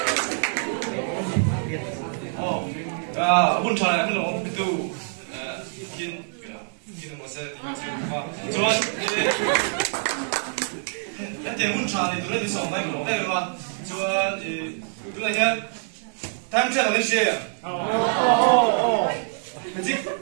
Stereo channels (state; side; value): silent; left; 62 dB below the other